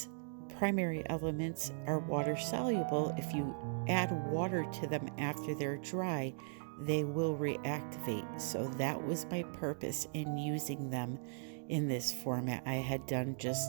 primary elements are water soluble, if you add water to them after they're dry, they will reactivate. So that was my purpose in using them in this format. I had done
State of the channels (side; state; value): left; silent; digital silence